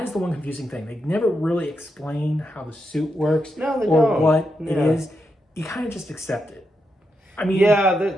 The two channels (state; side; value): normal; both; correlation 0.84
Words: is the one confusing thing. They never really explain how the suit works or what it is. You kind of just accept it. I mean, yeah,